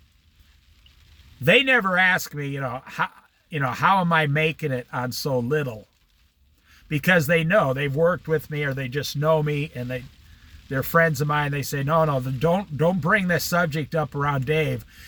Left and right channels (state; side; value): identical; both; correlation 1.00